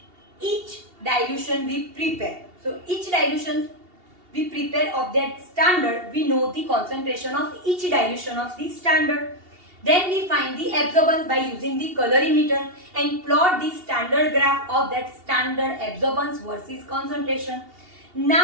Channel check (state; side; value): late; left; 2.8 ms